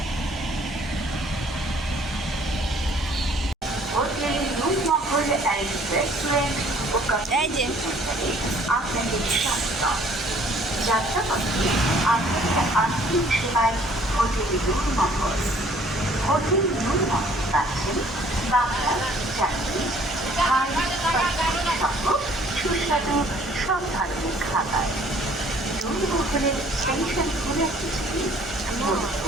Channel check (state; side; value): normal; both; correlation 0.58